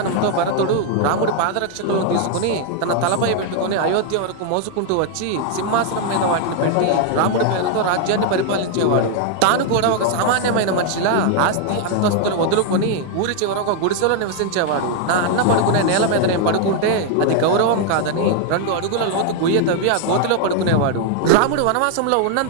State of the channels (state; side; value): different; both; correlation 0.00